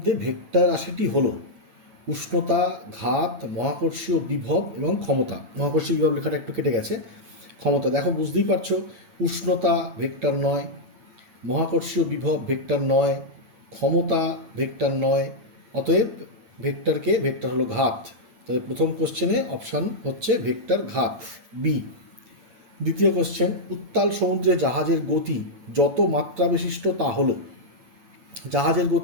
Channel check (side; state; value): left; late; 8.9 ms